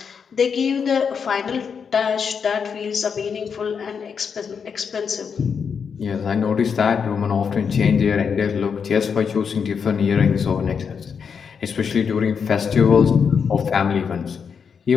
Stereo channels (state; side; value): quieter; right; 6.4 dB